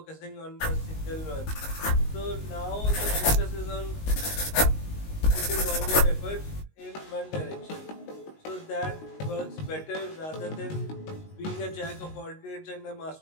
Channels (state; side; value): late; right; 19 ms